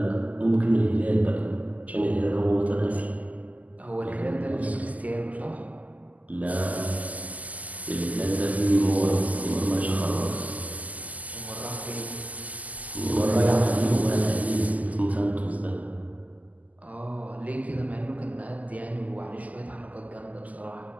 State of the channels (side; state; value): left; late; 0.076 ms